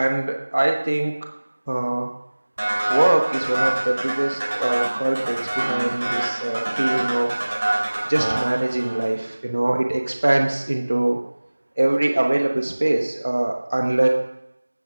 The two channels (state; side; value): inverted; both; correlation -1.00